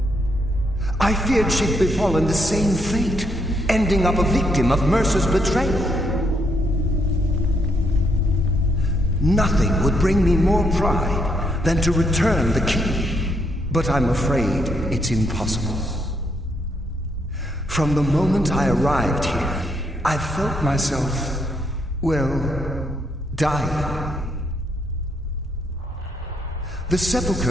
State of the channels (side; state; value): both; normal; correlation 0.75